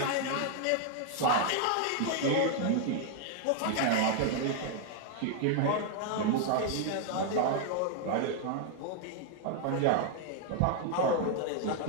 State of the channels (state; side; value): different; both; correlation 0.00